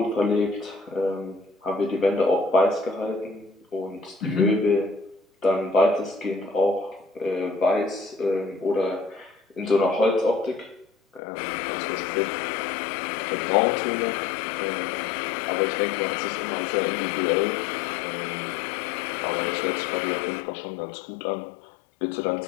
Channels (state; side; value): drops out; right; at 11.2 s